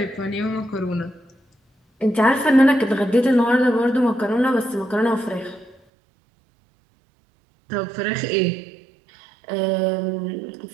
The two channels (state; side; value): drops out; left; at 5.8 s